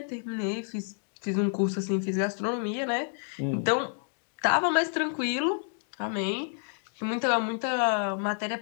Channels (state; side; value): silent; right; 58 dB below the other